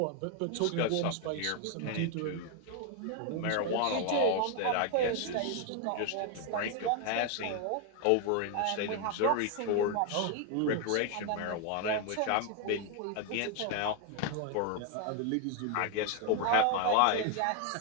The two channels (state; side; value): different; both; correlation 0.01